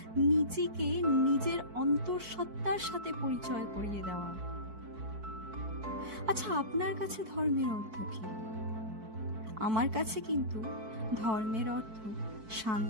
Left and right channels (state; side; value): late; left; 4.6 ms